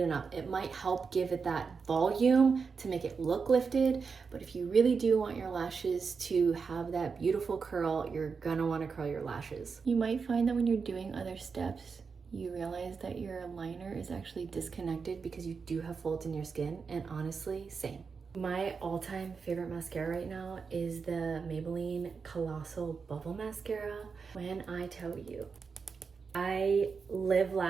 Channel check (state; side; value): quieter; left; 5.3 dB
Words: and up. It might help give it that volume to make it look lifted, but if you really do want your lashes to have that beautiful curl, you're gonna want to curl your lashes. You might find that when you're doing other steps, you realize that your liner is actually disconnected because you do have folds in your skin, and honestly, same. My all-time favorite mascara right now is the Maybelline Colossal Bubble Mascara. When I tell you, I live,